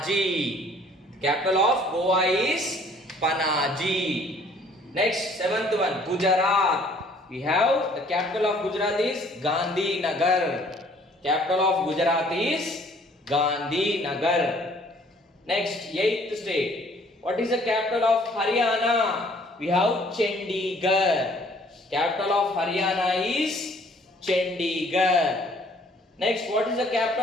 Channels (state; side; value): normal; both; correlation 0.58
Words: Capital of Goa is Panaji. Next, seventh one, Gujarat. We have the capital of Gujarat is Gandhinagar. Capital of Gujarat is Gandhinagar. Next, eighth state. What is the capital of Haryana? We have Chandigarh. Capital of Haryana is Chandigarh. Next, what is the